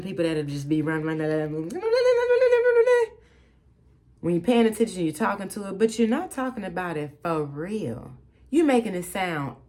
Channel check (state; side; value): identical; both; correlation 1.00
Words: people that'll just be running. When you're paying attention, you're talking to it, but you're not talking about it for real. You're making it sound